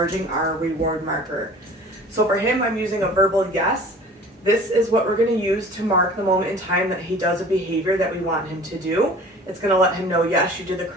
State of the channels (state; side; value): normal; both; correlation 0.45